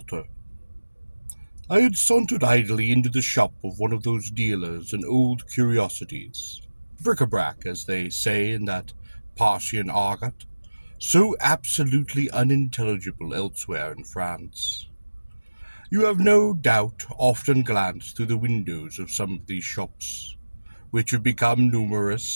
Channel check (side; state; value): both; inverted; correlation -1.00